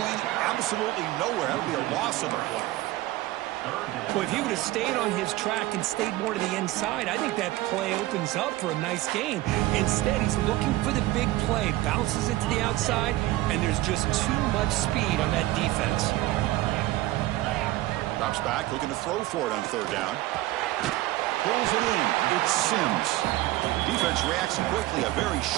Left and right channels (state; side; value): quieter; left; 17.1 dB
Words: absolutely nowhere. That would be a loss of the play. Well, if he would have stayed on his track and stayed more to the inside, I think that play opens up for a nice gain. Instead, he's looking for the big play, bounces it to the outside, and there's just too much speed on that defense. Drops back, looking to throw for it on 3rd down. Pulls it in. It's Sims. Defense reacts quickly. A very